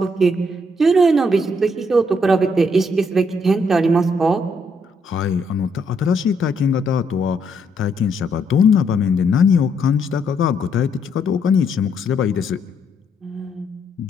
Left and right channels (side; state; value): both; normal; correlation 0.73